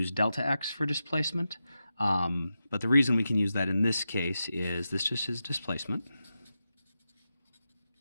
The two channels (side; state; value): both; inverted; correlation -0.89